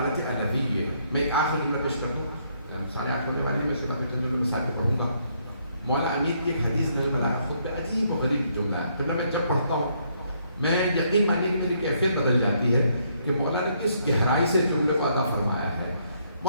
الہی ہے. میں ایک آخری جملہ پیش کر دوں، سارے آٹھ ہونے والے میں اس کے بعد چند جملے مثال پہ پڑھوں گا. مولا امیر کی ایک حدیث میں بلاغہ خود پہ عجیب و غریب جملہ ہے. جملہ میں جب پڑھتا ہوں میں یقین مانیے کہ میری کیفیت بدل جاتی ہے کہ مولا نے کس گہرائی سے جملے کو ادا فرمایا ہے.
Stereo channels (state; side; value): inverted; both; correlation -0.71